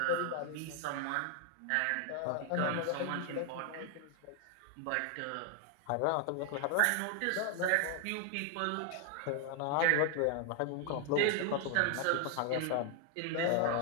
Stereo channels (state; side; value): different; both; correlation 0.01